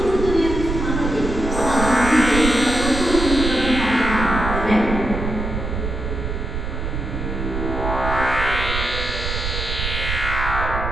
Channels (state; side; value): noise; right; rumble, 4 dB below the sound